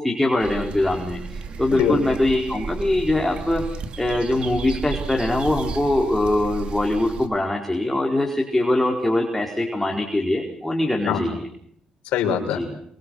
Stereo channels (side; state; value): both; normal; correlation 0.89